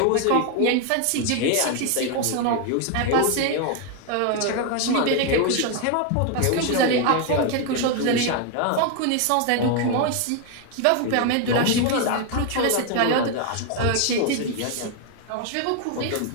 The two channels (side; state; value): both; different; correlation 0.01